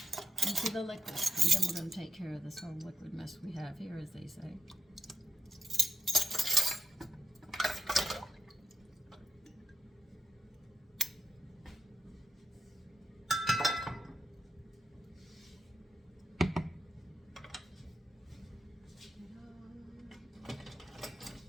Into the liquid, and then we're going to take care of this whole liquid mess we have here, as they say.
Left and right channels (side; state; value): both; normal; correlation 0.82